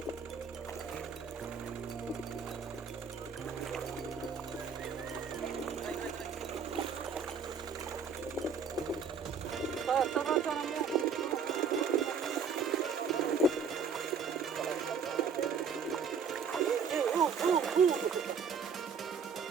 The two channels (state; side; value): quieter; left; 6.0 dB